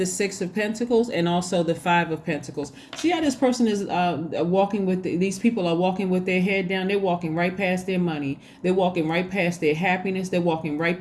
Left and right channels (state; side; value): identical; both; correlation 1.00